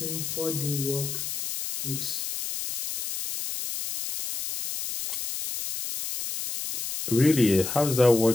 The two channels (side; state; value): left; noise; hiss, 5 dB below the sound